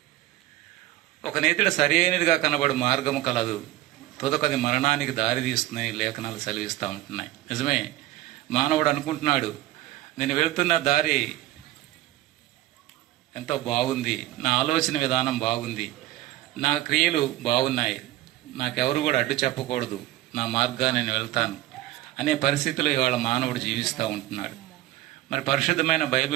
ఒక నేతిడ సరి అయినదిగా కనబడు మార్గము కలదు, తుదకది మరణానికి దారి తీస్తుందని లేఖనాలు సెలవిస్తూ ఉంటున్నాయి. నిజమే, మానవుడు అనుకుంటున్నాడు నేను వెళ్తున్న దారి ఎంతో బాగుంది, నా ఆలోచన విధానం బాగుంది, నా క్రియలు బాగున్నాయి, నాకెవరు కూడా అడ్డు చెప్పకూడదు, నా మార్గాన్ని నేను వెళ్తాను అనే పరిస్థితిలో ఇవాళ మానవుడు జీవిస్తూ ఉంటున్నాడు. మరి పరిశుద్ధమైన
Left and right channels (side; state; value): left; quieter; 15.8 dB